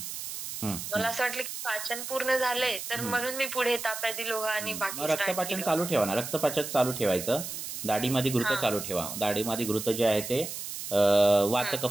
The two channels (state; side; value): noise; right; hiss, 7 dB below the sound